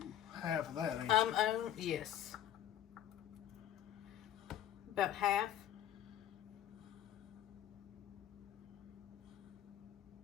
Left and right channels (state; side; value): quieter; right; 11.4 dB